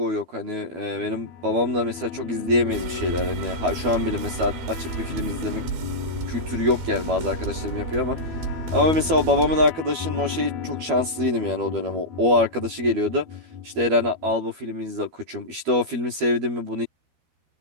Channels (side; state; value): left; late; 12 ms